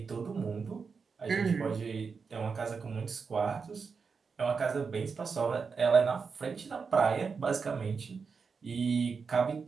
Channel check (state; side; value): quieter; left; 5.3 dB